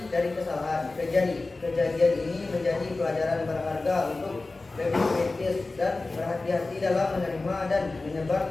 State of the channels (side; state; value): right; quieter; 3.4 dB